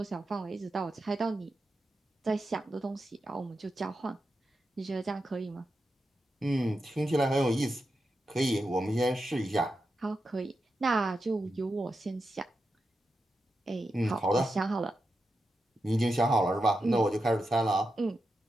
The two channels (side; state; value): both; normal; correlation 0.88